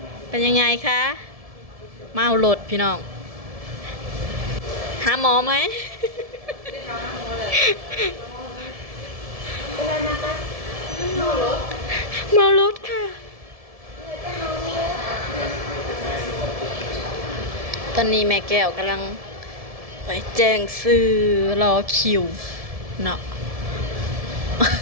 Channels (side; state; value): left; late; 1.7 ms